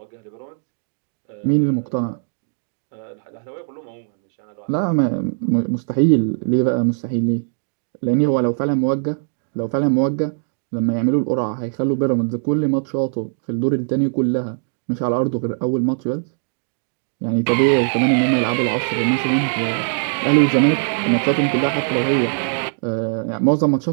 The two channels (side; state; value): left; silent; digital silence